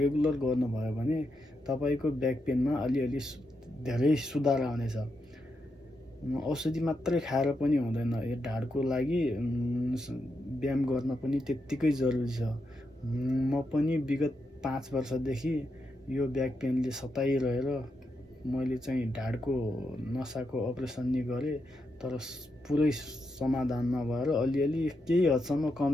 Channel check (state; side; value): normal; both; correlation 0.84